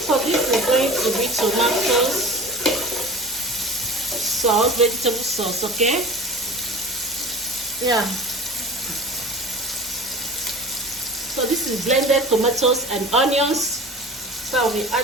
So this is going to be tomato sauce, vegetable sauce, okay? Yeah. So this is blended tomatoes and onions. So I'll be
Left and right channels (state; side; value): normal; both; correlation 0.39